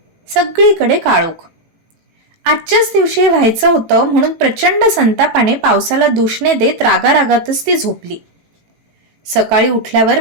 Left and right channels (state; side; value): late; left; 18 ms